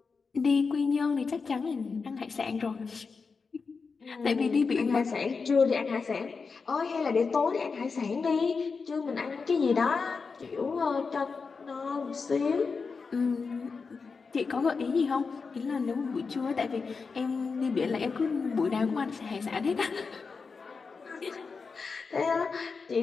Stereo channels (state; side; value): quieter; right; 4.9 dB